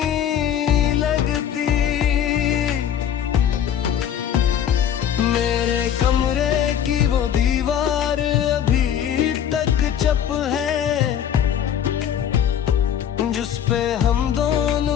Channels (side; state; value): right; quieter; 9.5 dB